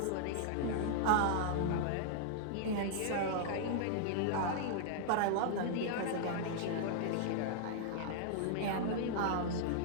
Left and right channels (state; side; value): different; both; correlation -0.01